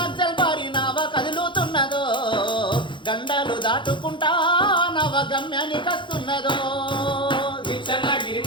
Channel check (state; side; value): late; right; 0.23 ms